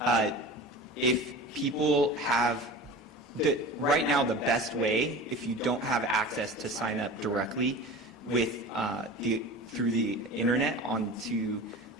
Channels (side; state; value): both; normal; correlation 0.35